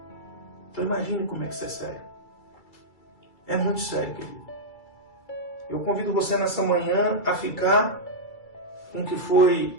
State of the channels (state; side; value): late; right; 2.3 ms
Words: Então imagine como é que isso é sério. É muito sério, querido. Eu convido você nessa manhã a ficar com o que